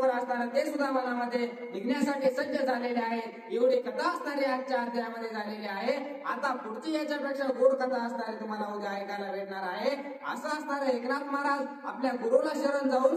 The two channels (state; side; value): identical; both; correlation 1.00